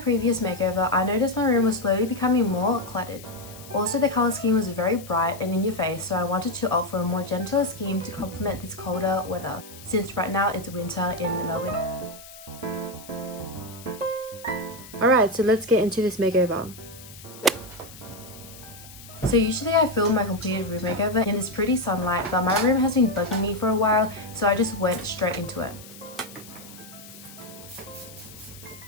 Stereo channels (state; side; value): noise; left; hiss, 18 dB below the sound